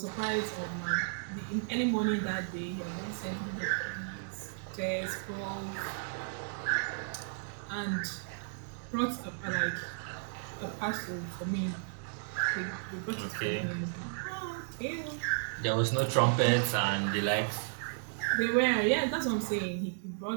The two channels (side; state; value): left; silent; digital silence